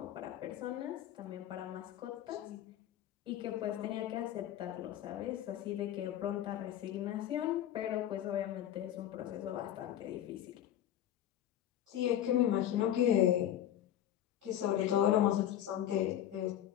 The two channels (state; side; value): quieter; right; 11.5 dB